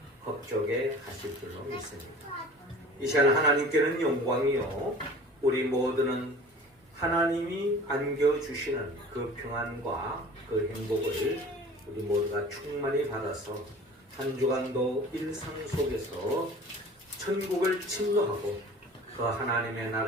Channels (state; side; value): normal; both; correlation 0.43